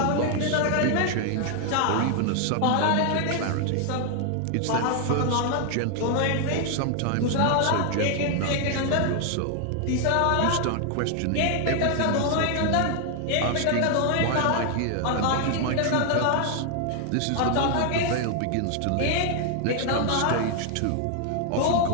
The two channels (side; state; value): both; different; correlation 0.00